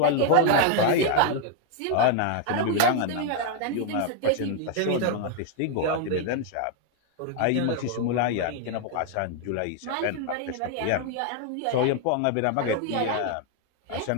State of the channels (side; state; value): both; different; correlation 0.00